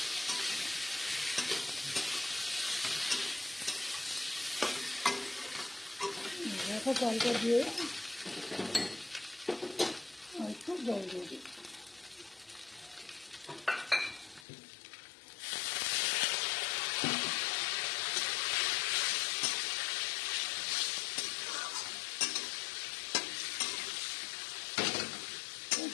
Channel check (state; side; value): drops out; right; at 14.5 s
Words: রাখা চালটা দিয়ে একটু জল দিয়ে দিই।